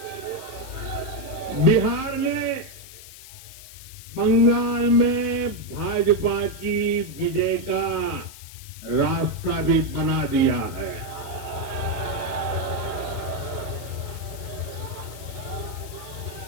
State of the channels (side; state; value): left; noise; hiss, 16 dB below the sound